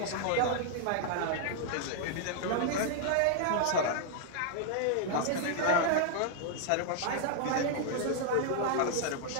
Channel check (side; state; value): both; different; correlation -0.01